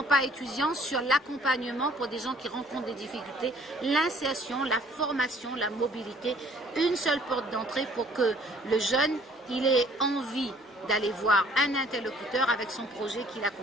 pas étudiants sur l'accompagnement pour des gens qui rencontrent des difficultés, l'insertion, la formation, la mobilité, une seule porte d'entrée pour que le jeune il ait envie d'aller voir un interlocuteur avec son projet qui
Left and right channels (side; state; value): both; normal; correlation 0.57